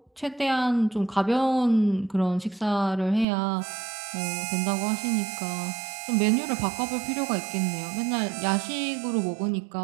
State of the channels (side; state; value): left; drops out; at 3.2 s